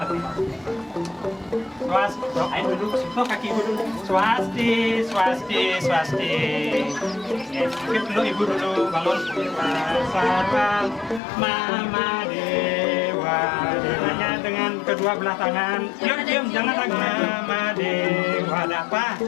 doain dulu sentuh kaki ibu dulu swasti mungkin dulu ibu dulu bangun Sarwam Mama Dewa Dewanya dengan kedua belah tangan cium jangan ragu Mama Dewa ada apa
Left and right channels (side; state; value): right; drops out; at 11.2 s